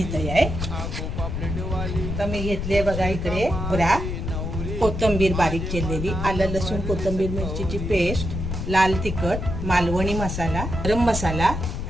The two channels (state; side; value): noise; left; rumble, 4 dB below the sound